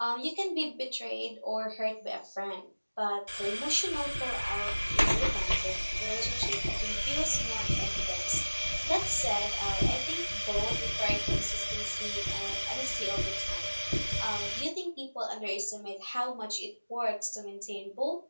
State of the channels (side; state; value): both; inverted; correlation -1.00